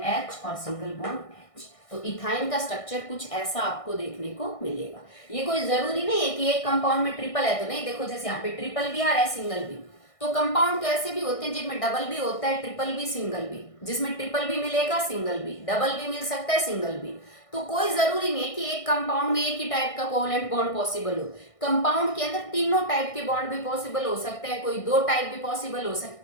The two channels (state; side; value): late; right; 1.6 ms